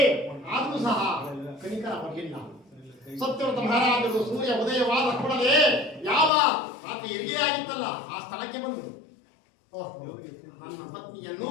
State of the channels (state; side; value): drops out; right; at 6.3 s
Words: ಆದರೂ ಸಹ ಕನಿಕರ ಬರಲಿಲ್ಲ. ಸತ್ಯವ್ರತ ಮಹಾರಾಜರು ಸೂರ್ಯ ಉದಯವಾದ ಕೂಡಲೇ ಯಾವ ಆತ ಹೆರಿಗೆಯಾಗಿತ್ತಲ್ಲ ಆ ಸ್ಥಳಕ್ಕೆ ಬಂದರು. ನನ್ನ